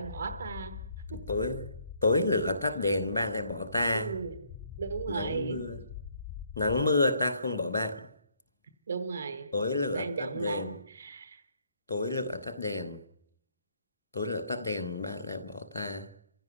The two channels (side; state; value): both; inverted; correlation -0.66